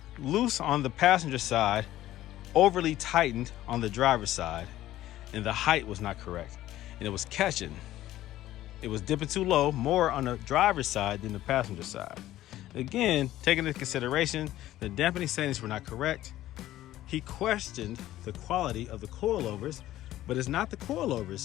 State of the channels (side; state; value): right; quieter; 14.3 dB